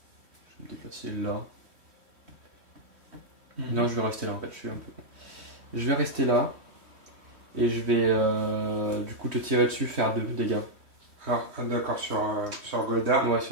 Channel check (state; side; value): late; left; 3.1 ms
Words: déplacer là. Non, je vais rester là en fait. Je suis un peu. Je vais rester là. Et je vais du coup te tirer dessus, faire 2 dégâts. Alors, d'accord, sur Goldar. Ouais,